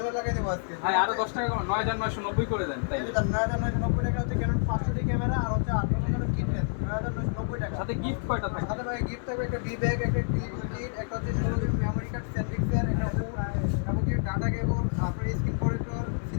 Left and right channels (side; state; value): right; silent; digital silence